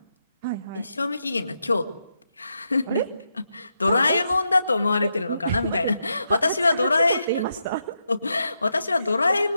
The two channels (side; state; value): both; inverted; correlation -0.83